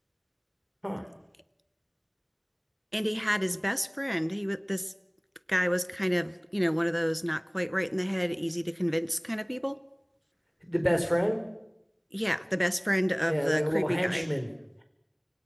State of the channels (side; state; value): both; identical; correlation 1.00